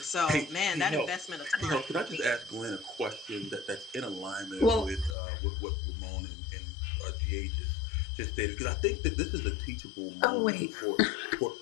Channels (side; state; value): right; drops out; at 5.2 s